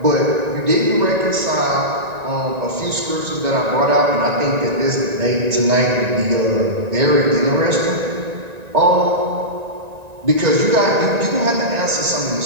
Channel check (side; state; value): left; late; 1.9 ms